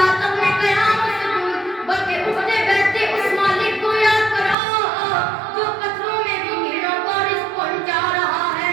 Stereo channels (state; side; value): drops out; left; at 4.5 s